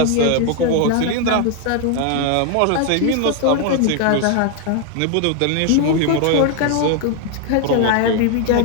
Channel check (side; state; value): both; different; correlation 0.01